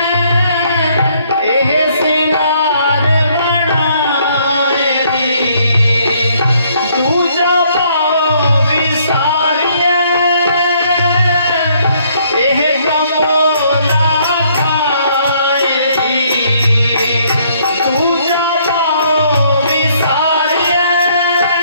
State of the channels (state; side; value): inverted; both; correlation -0.66